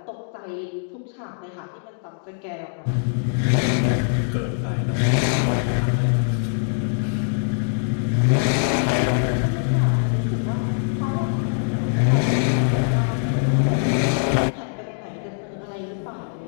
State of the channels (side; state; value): right; silent; digital silence